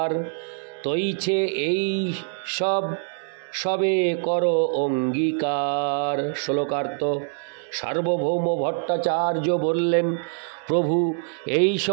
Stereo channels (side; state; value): left; silent; digital silence